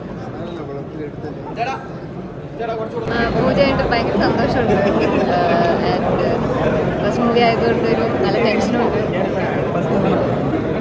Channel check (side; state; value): both; identical; correlation 1.00